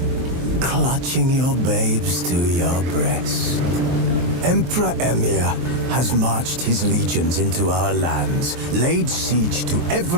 clutching your babes to your breast. Emperor Emhyr has marched his legions into our lands, laid siege to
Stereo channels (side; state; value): left; late; 23 ms